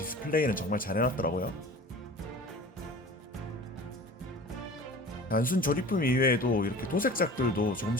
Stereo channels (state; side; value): normal; both; correlation 0.40